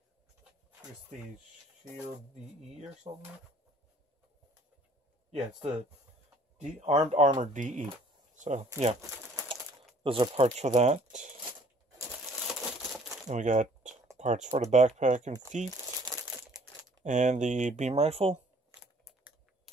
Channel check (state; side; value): normal; both; correlation 0.57